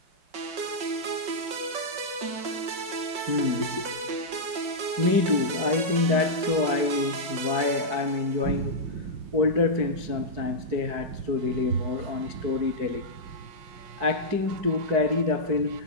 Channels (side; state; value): left; late; 5.3 ms